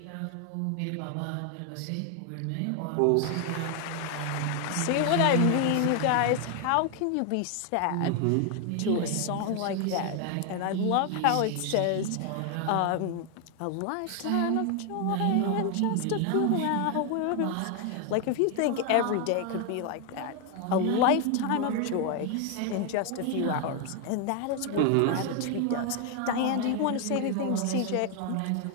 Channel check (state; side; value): different; both; correlation 0.00